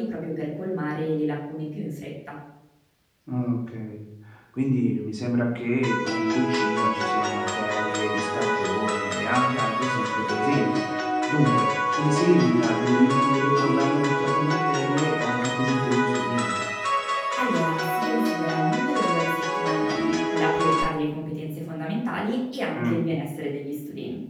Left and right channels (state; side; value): identical; both; correlation 1.00